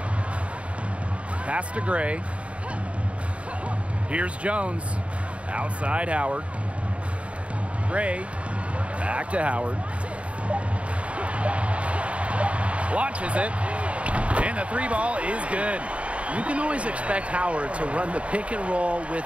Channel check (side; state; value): left; late; 0.063 ms